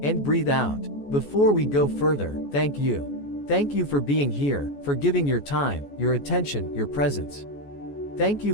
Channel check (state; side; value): late; right; 14 ms